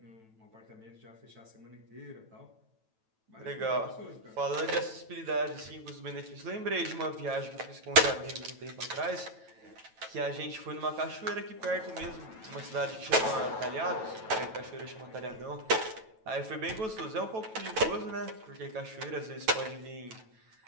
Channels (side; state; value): left; late; 9.1 ms